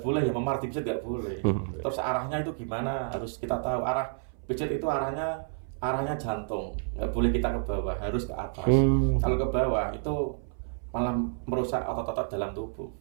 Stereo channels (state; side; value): silent; left; 58 dB below the other